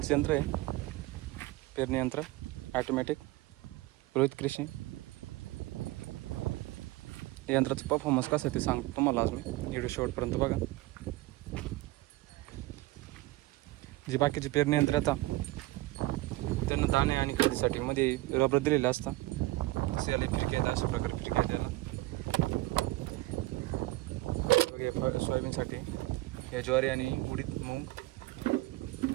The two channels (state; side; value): quieter; left; 19.2 dB